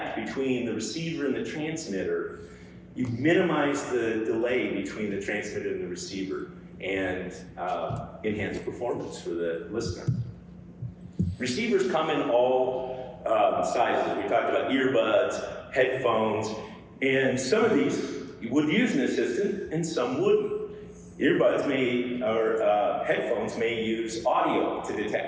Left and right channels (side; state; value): both; identical; correlation 1.00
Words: between the receiver and the transmitter, you minimize the delay between the transmitter and the receiver and enhance performance for the listener. Receivers come in all sizes. We talked about earbuds, headphones, and some of these would use an assistant and some wouldn't. Earbuds or headphones may use audio to